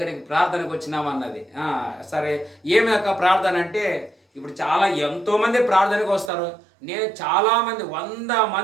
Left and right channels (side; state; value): left; drops out; at 6.3 s